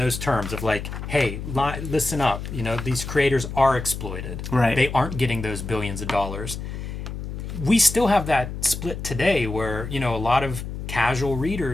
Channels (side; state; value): left; noise; hum, 7 dB below the sound